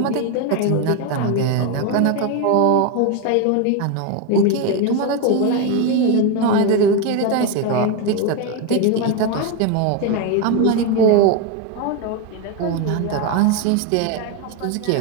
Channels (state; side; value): different; both; correlation 0.02